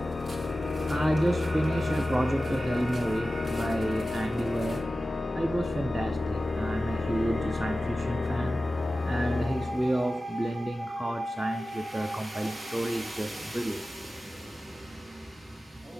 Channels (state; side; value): normal; both; correlation 0.95